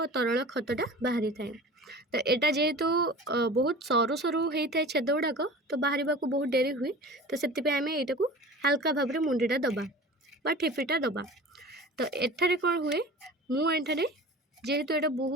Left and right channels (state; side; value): normal; both; correlation 0.38